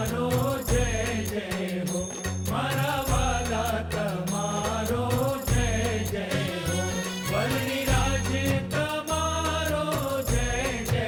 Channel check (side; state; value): both; identical; correlation 1.00